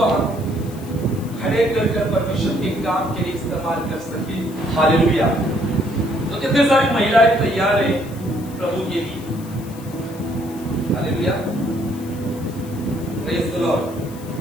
हम खड़े कर परमेश्वर के काम के लिए इस्तेमाल कर सके। हालेलुया। तो कितने सारी महिलाएं तैयार है प्रभु के लिए। Hallelujah, praise the Lord.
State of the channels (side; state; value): left; noise; hiss, 20 dB below the sound